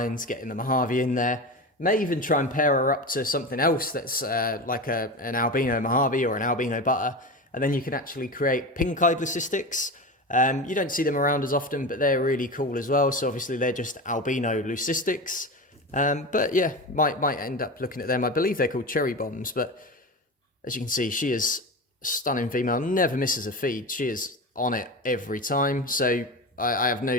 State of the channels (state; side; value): normal; both; correlation 0.25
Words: getting the Mojave in there. May even try and pair her up to something else that's like an albino Mojave or an albino butter, and then you can actually create pink-eyed leucistics. You don't see them around as often, but they're really cool as well. So obviously they're just albino leucistics. But yeah, might end up looking at them. I believe they're called cherry bombs, but as you can see, she is a stunning female, never misses a feed. She is on it every time. So I have no